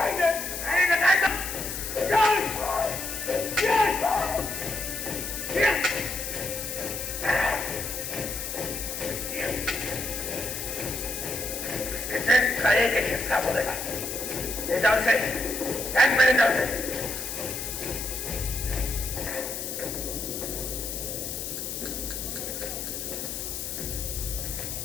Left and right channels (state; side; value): noise; left; hiss, 5 dB below the sound